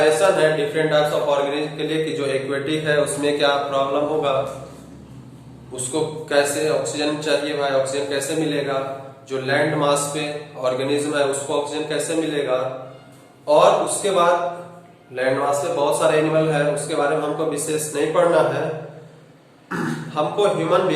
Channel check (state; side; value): identical; both; correlation 1.00